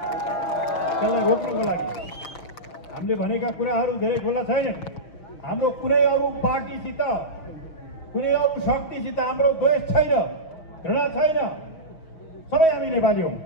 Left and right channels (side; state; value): right; late; 6.3 ms